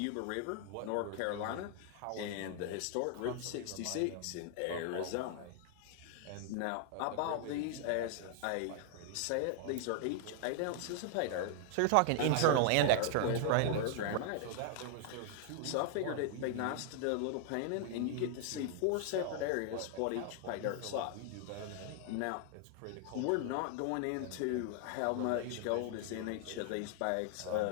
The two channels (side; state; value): both; different; correlation 0.00